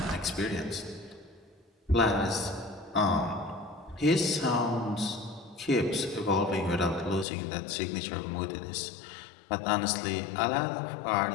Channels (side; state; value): right; drops out; at 7.2 s